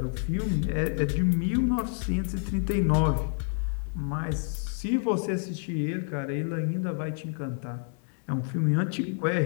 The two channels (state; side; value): silent; right; 59 dB below the other